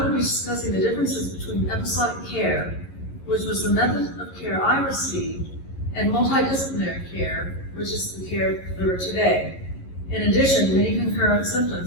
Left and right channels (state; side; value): late; right; 11 ms